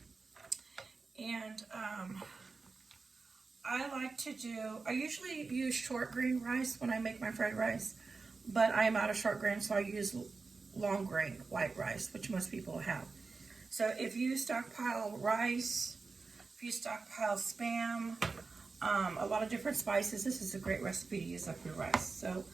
And I usually use short grain rice when I make my fried rice, but I am out of short grain, so I use long grain white rice, which most people have. So if you stockpile rice, if you stockpile Spam, a lot of different spices, this is a great recipe to use up your rice. So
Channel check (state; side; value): quieter; left; 4.2 dB